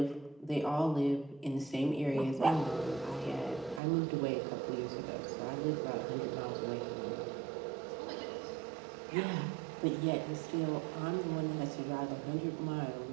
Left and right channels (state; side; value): drops out; left; at 3.8 s